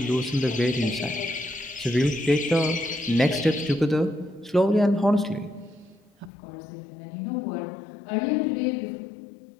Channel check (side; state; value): right; drops out; at 6.3 s